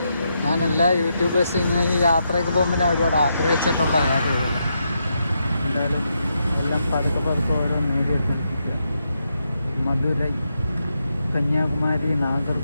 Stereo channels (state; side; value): inverted; both; correlation -0.82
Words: ഞാൻ എല്ലാ യൂട്യൂബേഴ്സും ഇങ്ങനെ ഈ യാത്രയൊക്കെ പോകുമ്പോൾ ഞാൻ ഒരുപാട് ആഗ്രഹിച്ചിട്ടുള്ള കാര്യമല്ല. എന്തായാലും എല്ലാം പതുക്കെ പതുക്കെ ഓരോ നേടിയെടുത്തിരിക്കുക. മധുരൈ, കന്യാകുമാരി,